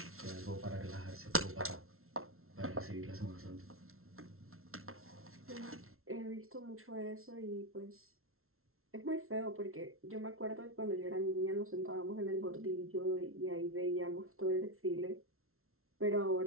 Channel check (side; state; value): left; late; 0.62 ms